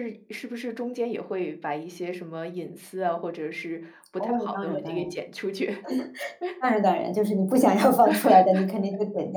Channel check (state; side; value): identical; both; correlation 1.00